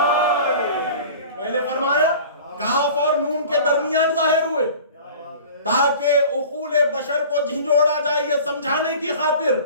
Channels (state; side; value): inverted; both; correlation -0.42